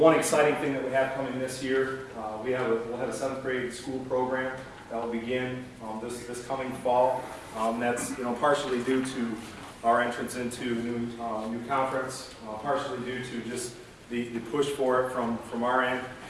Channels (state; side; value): identical; both; correlation 1.00